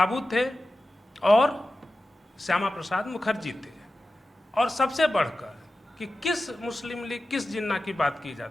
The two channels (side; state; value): both; normal; correlation 0.94